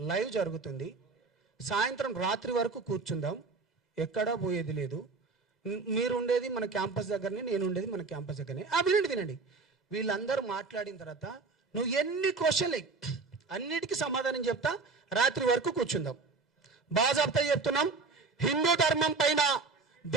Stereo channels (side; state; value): left; quieter; 4.2 dB